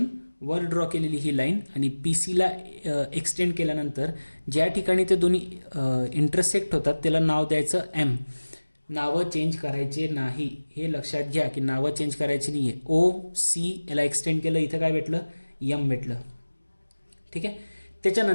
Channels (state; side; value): inverted; both; correlation -1.00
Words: वर ड्रॉ केलेली ही लाईन आणि PC ला एक्सटेंड केल्यानंतर ज्या ठिकाणी ते दोन्ही इंटरसेक्ट होतात त्याला नाव द्यायचं M. नावं चेंज करायचे नाही, हे लक्षात घ्या की नावं चेंज करायची नाही आहे. OC याला एक्सटेंड केलं, इथं काय भेटलं, M भेटलं. ठीक आहे.